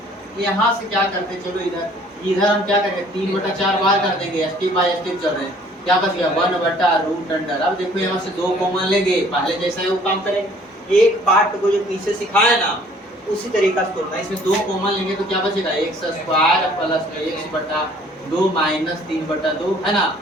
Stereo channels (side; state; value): both; normal; correlation 0.56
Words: यहाँ से क्या करते चलो इधर हम क्या करेंगे 3/4 बाहर कर देंगे, स्टेप बाय स्टेप चल रहे हैं। क्या बच गया 1/रूट अंडर। अब देखो यहाँ से 2 कॉमन लेंगे, पहले जैसा है वो काम करेंगे, एक पार्ट को जो पीछे सिखाया ना उसी तरीका से तोड़ना। इसमें 2 कॉमन लेंगे तो क्या बचेगा x स्क्वायर प्लस में x बटा 2 माइनस 3/2 है ना,